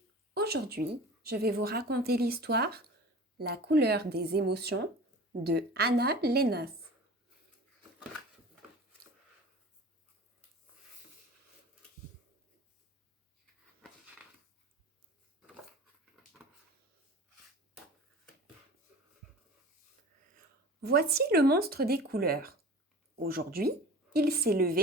Aujourd'hui, je vais vous raconter l'histoire La couleur des émotions de Anna Lénas. Voici le monstre des couleurs. Aujourd'hui, il s'est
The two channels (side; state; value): both; normal; correlation 0.39